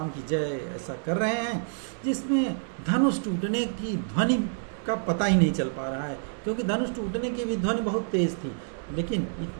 की जय ऐसा कर रहे हैं, जिसमें धनुष टूटने की ध्वनि का पता ही नहीं चल पा रहा है, क्योंकि धनुष टूटने की भी ध्वनि बहुत तेज थी, लेकिन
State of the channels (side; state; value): left; silent; digital silence